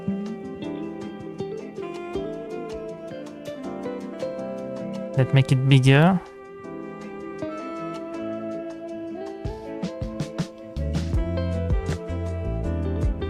Let's make it bigger.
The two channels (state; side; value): identical; both; correlation 1.00